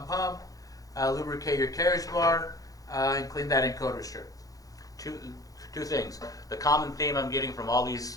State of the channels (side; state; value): right; late; 0.17 ms